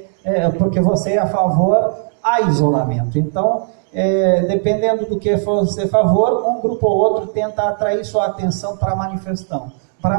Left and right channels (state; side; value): silent; left; digital silence